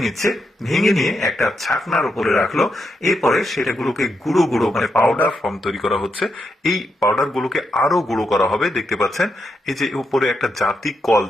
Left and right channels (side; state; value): both; normal; correlation 0.83